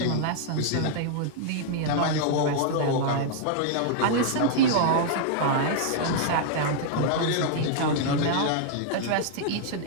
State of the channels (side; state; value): both; different; correlation -0.01